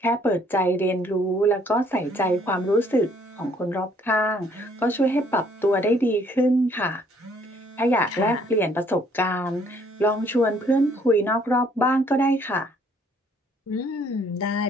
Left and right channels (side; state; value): both; normal; correlation 0.63